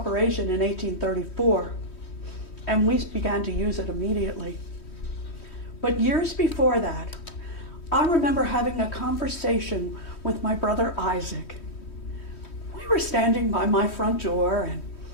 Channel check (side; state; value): right; late; 3.1 ms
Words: in 1834, and we began to use it immediately. But years before that, I remember having a conversation with my brother Isaac. We were standing by my front door, and